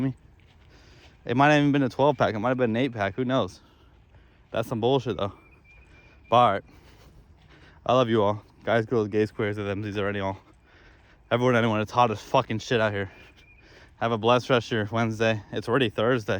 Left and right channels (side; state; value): both; identical; correlation 1.00